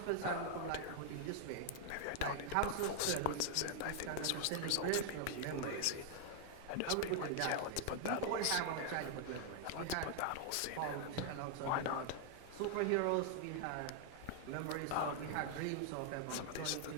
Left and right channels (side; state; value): both; different; correlation 0.00